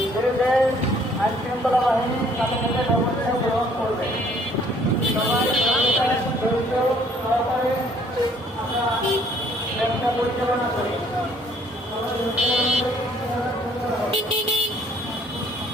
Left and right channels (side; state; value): both; normal; correlation 0.60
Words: বিরুদ্ধে আইন শৃঙ্খলা বাহিনী সাথে সাথে ব্যবস্থা গ্রহণ করবে। সবাই সহকারে আমরা ব্যবসা পরিচালনা করি।